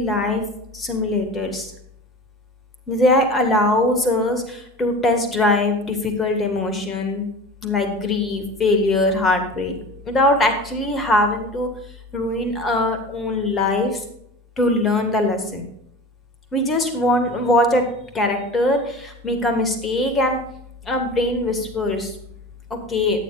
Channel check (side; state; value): both; normal; correlation 0.36